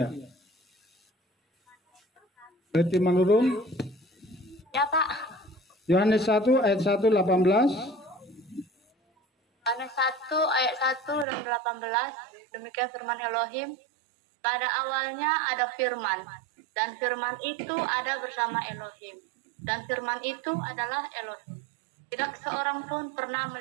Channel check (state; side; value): drops out; left; at 11.2 s